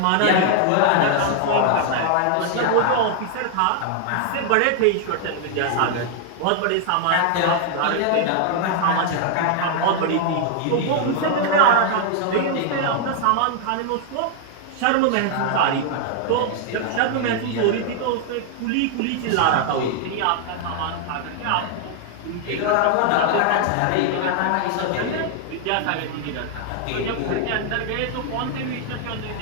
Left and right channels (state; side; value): different; both; correlation 0.00